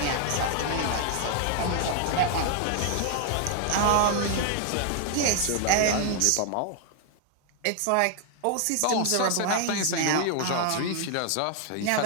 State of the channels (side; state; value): both; different; correlation 0.00